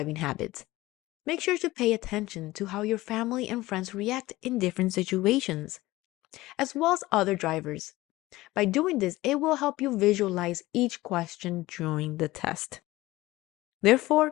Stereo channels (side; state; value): right; quieter; 18.3 dB